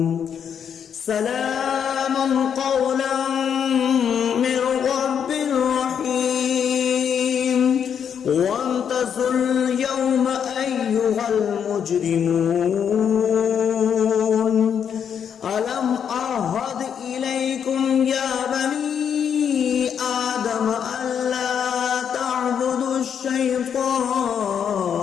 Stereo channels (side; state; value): right; quieter; 7.9 dB